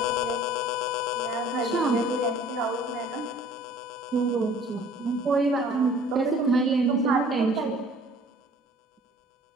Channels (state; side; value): normal; both; correlation 0.51